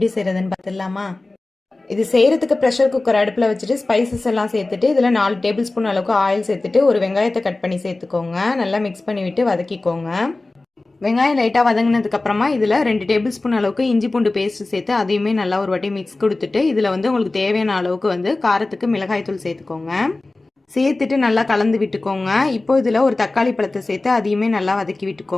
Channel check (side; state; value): right; quieter; 3.1 dB